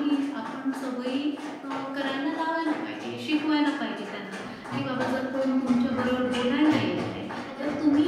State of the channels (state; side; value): identical; both; correlation 1.00